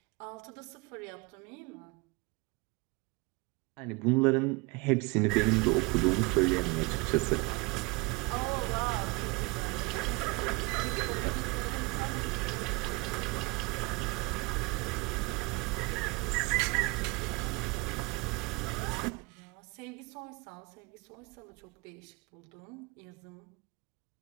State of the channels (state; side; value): quieter; left; 26.3 dB